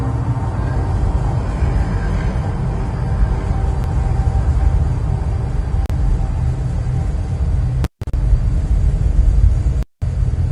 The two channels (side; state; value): both; identical; correlation 1.00